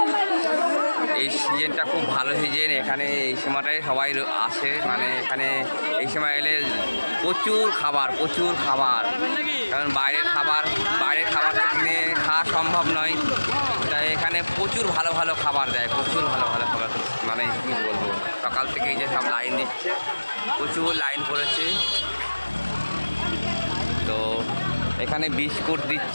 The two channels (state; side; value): inverted; both; correlation -1.00